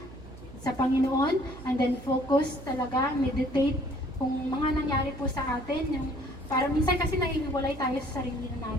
sa Panginoon, and then focus talaga, meditate kung mga nangyari po sa atin, yung para minsan kasi nahihiwalay tayo sa sarili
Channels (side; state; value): right; noise; hum, 16 dB below the sound